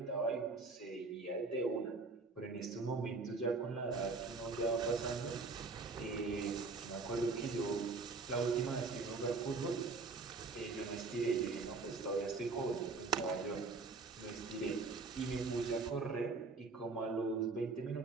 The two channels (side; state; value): left; quieter; 4.1 dB